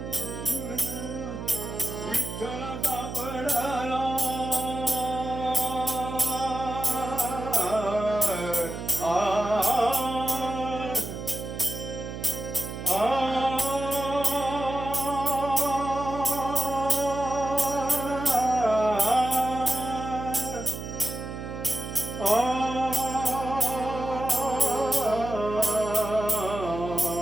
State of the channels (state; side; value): noise; right; hum, 8 dB below the sound